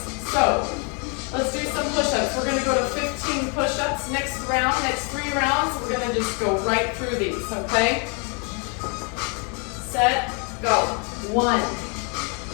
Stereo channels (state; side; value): quieter; right; 35.8 dB